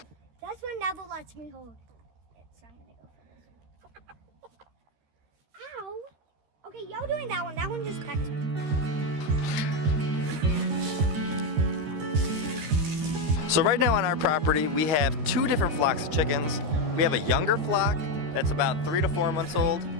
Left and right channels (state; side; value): late; left; 13 ms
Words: That's when Neville lets me hold it, so I'm gonna go for this. Ow. Okay, y'all doing that one. That one just pecked me. So right now on our property, we have two different flocks of chickens. We have a younger flock that's about 3 to 4 months old,